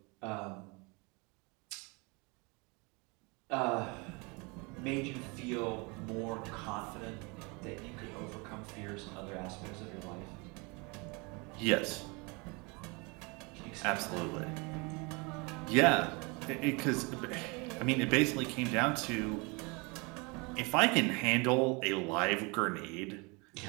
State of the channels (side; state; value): left; quieter; 28.9 dB